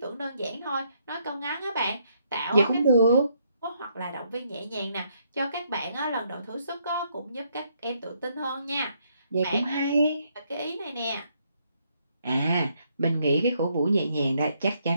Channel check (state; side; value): inverted; both; correlation -0.73